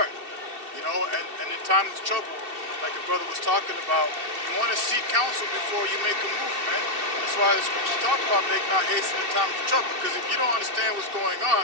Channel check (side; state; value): left; late; 2.7 ms